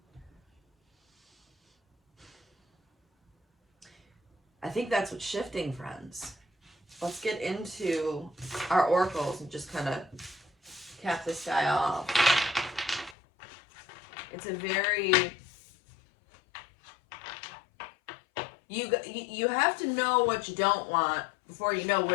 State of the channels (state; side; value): drops out; right; at 13.2 s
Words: I think that's what's shifting, friends. Let's get into our oracles and just kind of cap this guy off. It's a very... You have to know what you don't want before you know